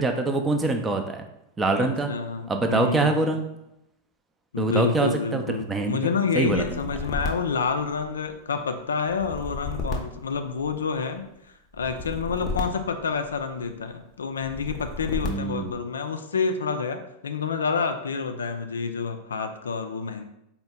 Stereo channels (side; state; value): both; normal; correlation -0.05